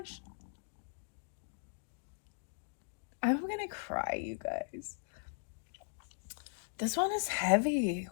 I'm going to cry, you guys. This one is heavy.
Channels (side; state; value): right; silent; digital silence